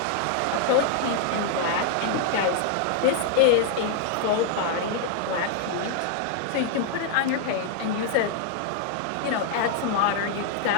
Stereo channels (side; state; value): both; different; correlation 0.00